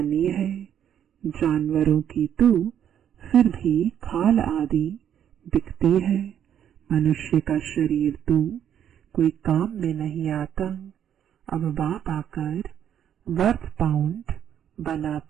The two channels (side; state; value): left; quieter; 9.6 dB